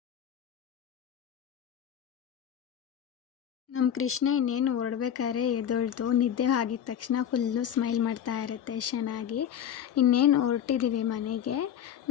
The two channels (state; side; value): quieter; right; 9.5 dB